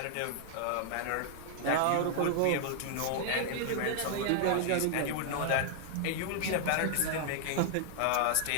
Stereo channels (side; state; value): both; different; correlation -0.01